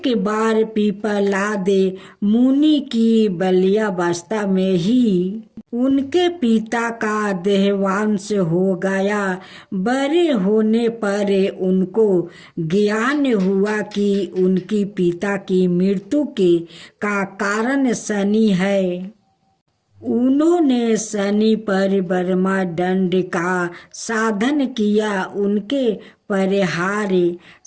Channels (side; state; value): both; identical; correlation 1.00